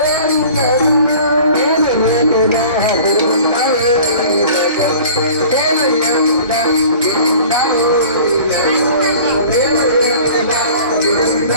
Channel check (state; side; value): inverted; both; correlation -0.45